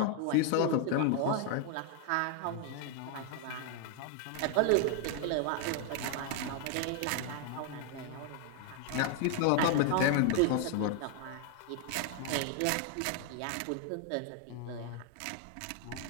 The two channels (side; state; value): both; different; correlation 0.00